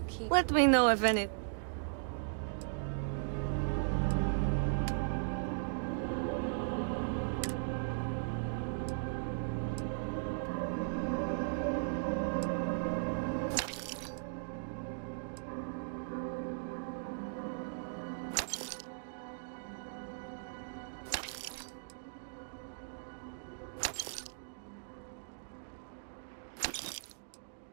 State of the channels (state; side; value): silent; left; digital silence